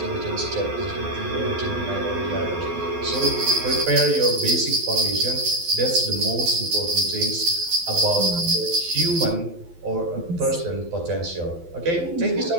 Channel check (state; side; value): late; left; 12 ms